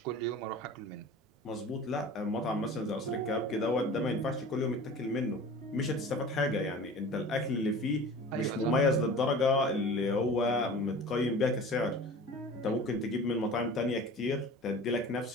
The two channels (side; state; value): both; normal; correlation 0.40